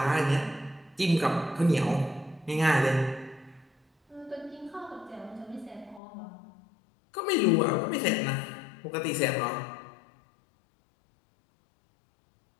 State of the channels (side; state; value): right; drops out; at 6.0 s